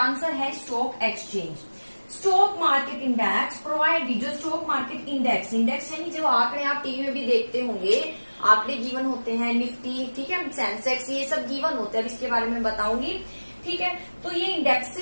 है stock exchange. Stock market index provide, जो स्टॉक मार्केट इंडेक्स यानी जो आंकड़े आप टीवी में भी देखते होंगे, आंकड़े गिवन होते हैं, निफ्टी, ठीक है, सेंसेक्स, ये सब गिवन होते हैं, अब इसके बारे में बताऊंगी। ठीक है, तो ये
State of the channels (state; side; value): inverted; both; correlation -1.00